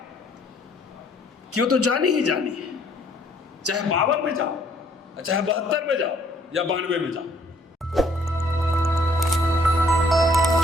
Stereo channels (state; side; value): normal; both; correlation 0.63